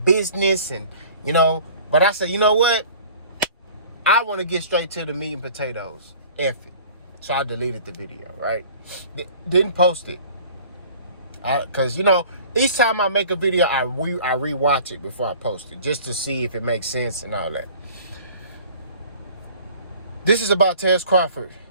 business and, but I said, you know what? I want to get straight to the meat and potatoes. F it. So I deleted the video, right? Didn't post it. Because, each time I make a video, I rewatch it before I post it, just to see if it makes sense and all that. This is about Terence Crawford,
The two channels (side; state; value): both; inverted; correlation -0.47